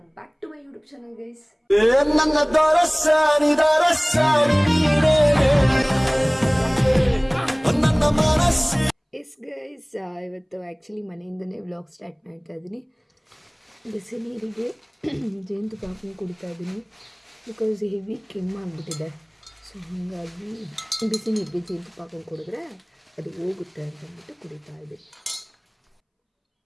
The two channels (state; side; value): identical; both; correlation 1.00